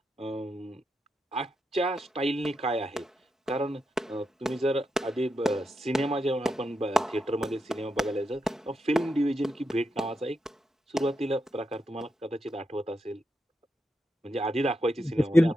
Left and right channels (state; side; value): normal; both; correlation 0.85